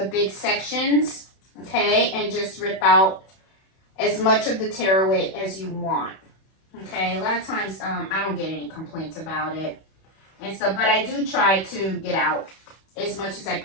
big sections, okay, and just rip out as much of the tearaway as you want, okay? A lot of times, I don't get any complaints about it and stuff, but I do try to get out as much as I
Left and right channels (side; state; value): right; late; 31 ms